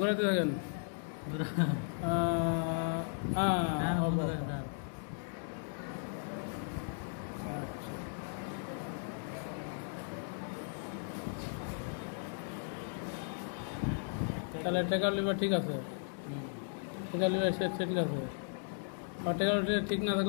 ঘুরাতে থাকেন। তাহলে টেকার লিভার ঠিক আছে, টেকার লিভার ঠিক আছে। আর টেকার ঠিক না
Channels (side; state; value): right; silent; digital silence